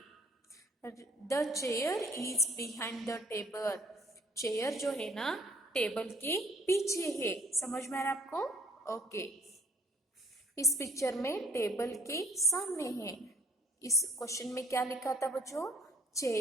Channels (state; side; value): normal; both; correlation 0.58